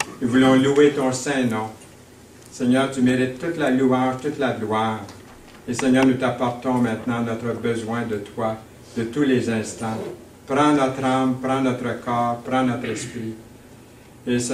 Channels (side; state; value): both; identical; correlation 1.00